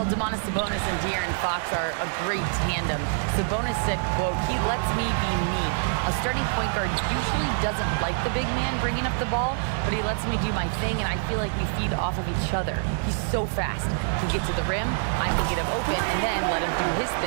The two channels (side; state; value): left; silent; digital silence